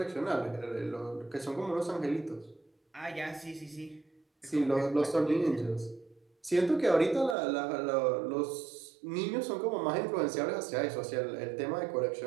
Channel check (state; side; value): drops out; left; at 7.4 s